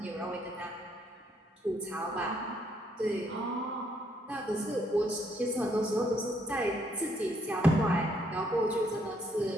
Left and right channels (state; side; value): normal; both; correlation 0.70